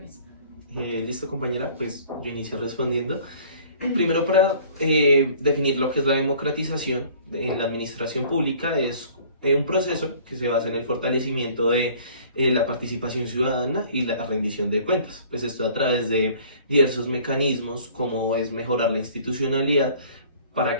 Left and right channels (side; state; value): both; inverted; correlation -0.52